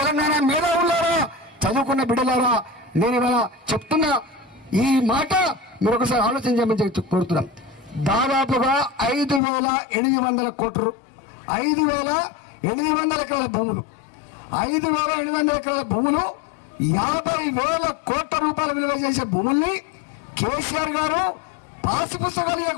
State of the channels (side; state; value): right; drops out; at 9.4 s